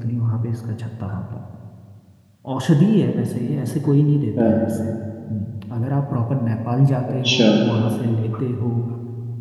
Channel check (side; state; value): both; identical; correlation 1.00